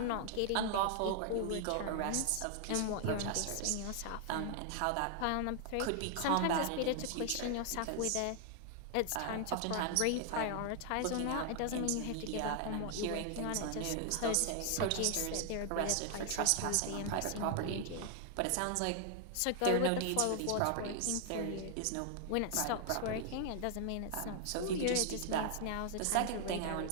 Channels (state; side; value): different; both; correlation 0.00